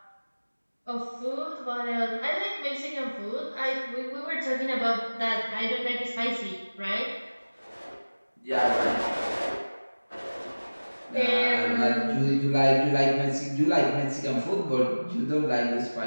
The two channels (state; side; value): inverted; both; correlation -1.00